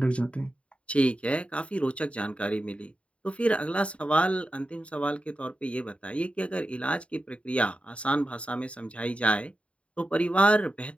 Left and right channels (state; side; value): late; right; 0.062 ms